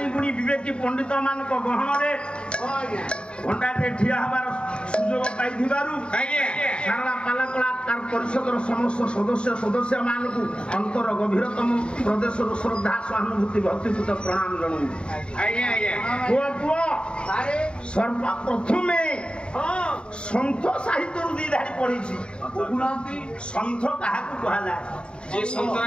गुणी विवेकी पंडित मानक गहन रे घंटाटे ठिया हबार सुजोग पाइथिबारु सारा पाला कलाकार परिषदर समस्त सदस्य मानकु अंतर गभीरतम प्रदेश श्रद्धा सहानुभूति भक्तिपूत प्रणाम जनु। सर्वप्रथमे सन्थ साहित्य दी धारी पढ़ी सन्थ क्या कह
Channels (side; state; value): right; late; 0.053 ms